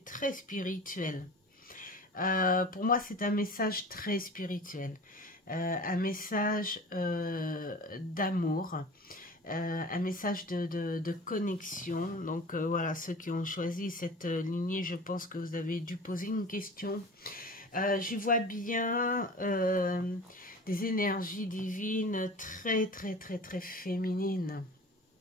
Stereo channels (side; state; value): both; normal; correlation 0.39